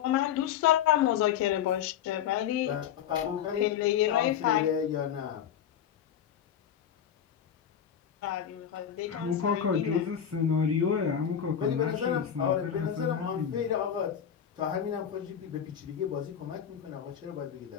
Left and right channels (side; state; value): right; quieter; 9.0 dB